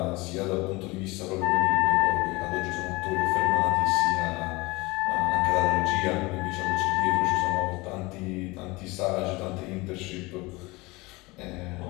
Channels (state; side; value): quieter; right; 23.3 dB